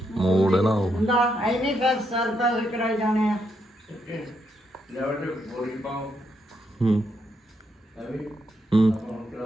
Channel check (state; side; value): normal; both; correlation 0.79